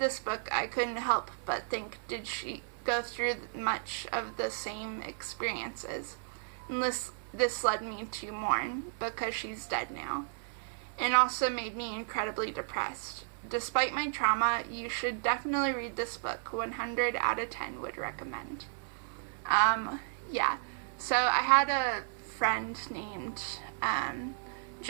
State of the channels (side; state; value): left; silent; digital silence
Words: book, I couldn't help but think, did she go through much of the same experiences? And this led me to mourn because she's dead now. And also made me incredibly depressed. Despite my trauma, you should definitely read this book. 100 out of 10 would recommend. Yeah. So I had a friend named